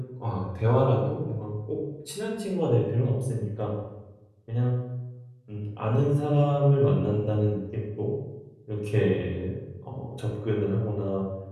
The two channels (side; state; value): both; identical; correlation 1.00